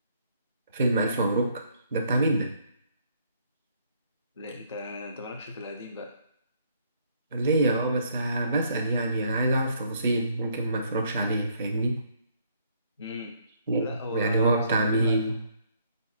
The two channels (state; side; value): inverted; both; correlation -0.67